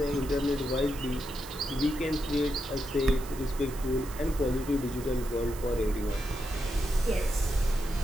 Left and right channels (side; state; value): right; noise; hiss, 16 dB below the sound